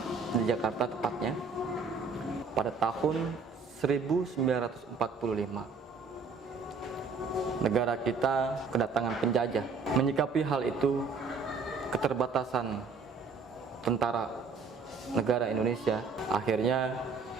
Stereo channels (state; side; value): quieter; left; 4.8 dB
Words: di Jakarta tepatnya pada tahun 1945. Negara kita kedatangan penjajah. Menyikapi hal itu, keterbatasan tentara negara Indonesia, akhirnya